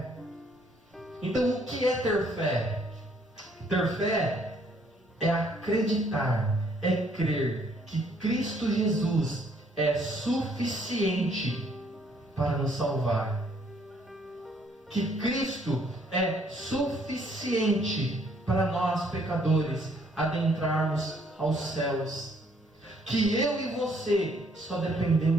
Então, o que é ter fé? Ter fé é acreditar, é crer que Cristo Jesus é suficiente para nos salvar, que Cristo é suficiente para nós pecadores adentrarmos aos céus, que eu e você só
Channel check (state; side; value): normal; both; correlation 0.65